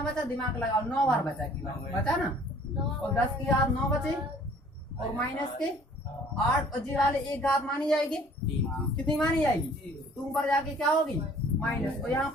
बचा, दिमाग लगाओ, 9 बार बचा की बचा ना, और 10 की घात 9 बचे, और माइनस के 8, और जी वाले एक घात मानी जाएगी, कितनी मानी जाएगी, तो ऊपर जाके क्या होगी माइनस, और यहाँ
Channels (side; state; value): both; normal; correlation 0.54